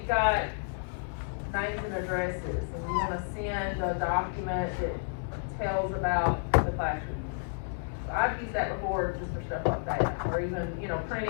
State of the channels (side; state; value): right; silent; digital silence